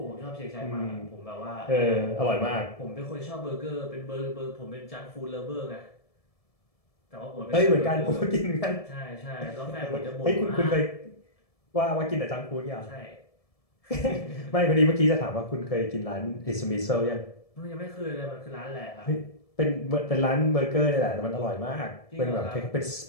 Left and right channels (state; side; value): late; right; 1.7 ms